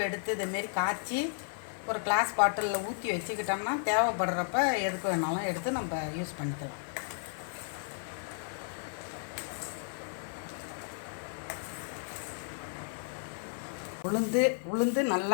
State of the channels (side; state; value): right; silent; 55 dB below the other